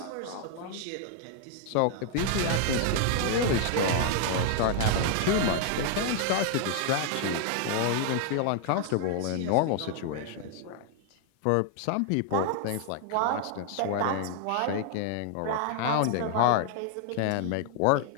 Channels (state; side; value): different; both; correlation 0.00